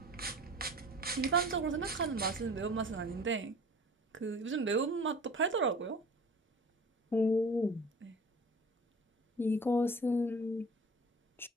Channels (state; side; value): normal; both; correlation 0.42